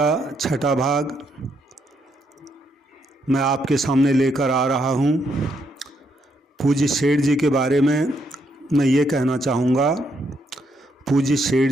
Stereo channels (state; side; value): normal; both; correlation 0.76